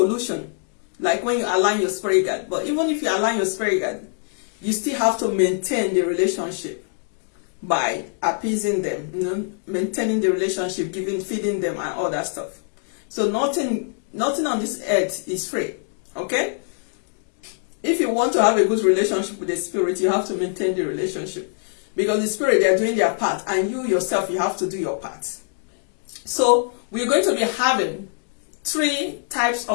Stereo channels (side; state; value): right; silent; 63 dB below the other